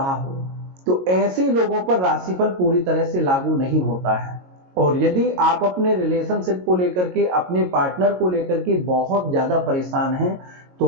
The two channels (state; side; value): late; left; 22 ms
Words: हो, तो ऐसे लोगों पर राशिफल पूरी तरह से लागू नहीं होता है। और यदि आप अपने रिलेशनशिप को लेकर के, अपने पार्टनर को लेकर के बहुत ज्यादा परेशान हैं, तो